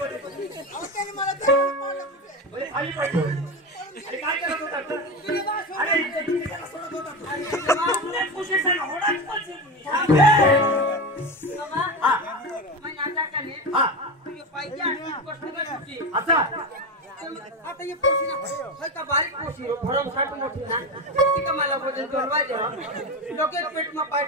होते? खाली पाहिजे अरे काय करत होता? अरे सोडत होता आता ये पोशी ना होय का बारीक पोशी भरम साठ मोठी ना ती का मला वजन जोडवा दे लोके पेट में पाय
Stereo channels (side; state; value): both; normal; correlation 0.20